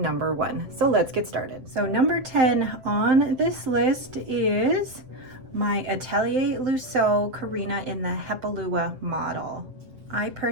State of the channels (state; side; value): late; left; 7.6 ms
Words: 1. So let's get started. So number 10 on this list is my Atellier Luo Karina in the Atellier model. I